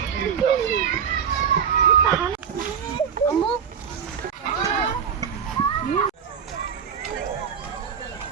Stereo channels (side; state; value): left; quieter; 7.5 dB